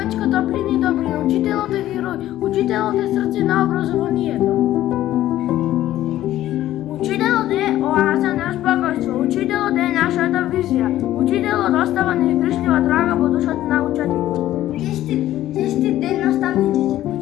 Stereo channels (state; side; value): quieter; right; 13.7 dB